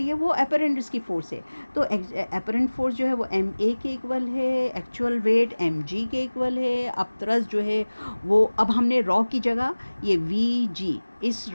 है वो अपेरेंट इसकी फोर्स है। तो अपेरेंट फोर्स जो है वो MA के इक्वल है, एक्चुअल वेट MG के इक्वल है। अब तरस जो है वो, अब हमने रॉ की जगह ये VG, इस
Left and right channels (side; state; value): both; inverted; correlation -1.00